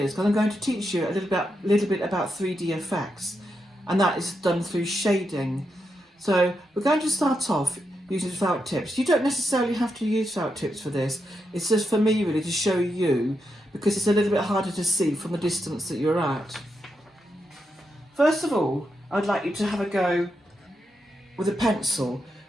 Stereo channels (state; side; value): normal; both; correlation 0.84